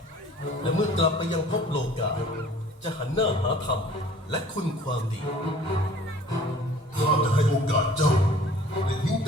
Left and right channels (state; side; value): normal; both; correlation 0.50